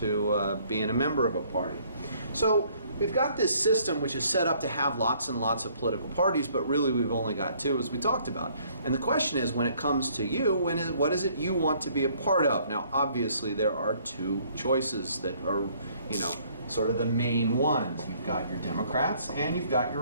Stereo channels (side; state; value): both; inverted; correlation -0.62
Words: being a member of a party. So we've got this system which is set up to have lots and lots of political parties, but really we've only got two, as we talked about. And the question is, when it comes to you, what is it you want to be a part of? Now, obviously, there are two choices that are, sort of the main ones. You've got your Democrats and you've got